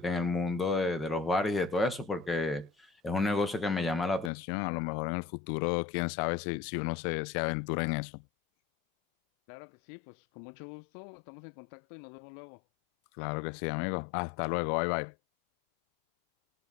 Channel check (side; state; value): right; drops out; at 4.3 s